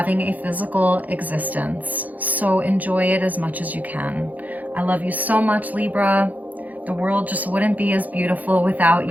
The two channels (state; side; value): late; left; 0.079 ms